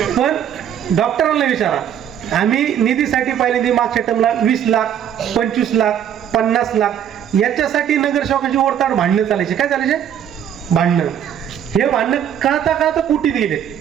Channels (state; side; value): quieter; left; 9.5 dB